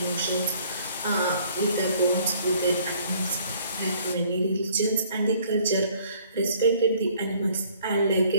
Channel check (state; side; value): inverted; both; correlation -0.59